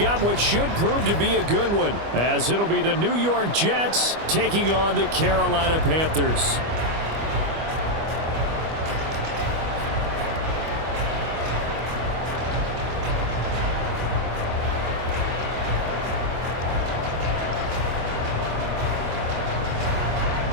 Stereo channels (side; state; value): left; late; 25 ms